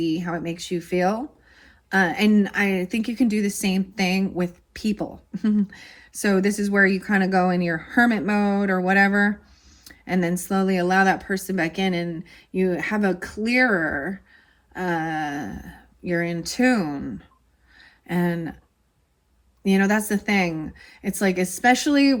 how it makes you feel. And I think you can do the same thing with people. So this is where you kind of go in your hermit mode or whatever, and then slowly allow that person back in, and you have a clearer, you're in tune. And that's the thing. It's like, especially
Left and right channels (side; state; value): both; identical; correlation 1.00